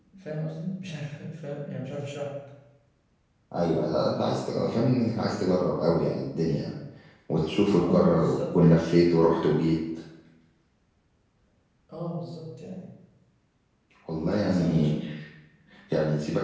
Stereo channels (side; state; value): both; identical; correlation 1.00